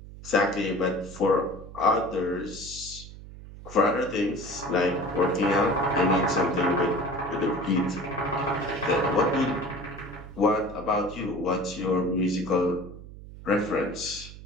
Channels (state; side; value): noise; right; hum, 15 dB below the sound